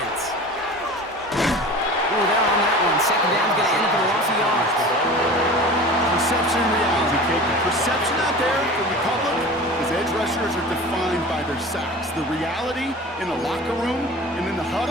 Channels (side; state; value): both; normal; correlation 0.37